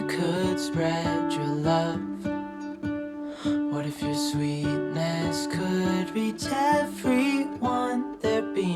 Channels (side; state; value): both; identical; correlation 1.00